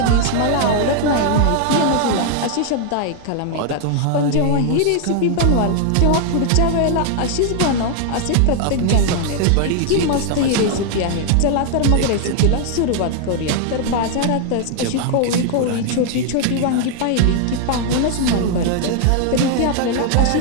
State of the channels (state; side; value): different; both; correlation 0.00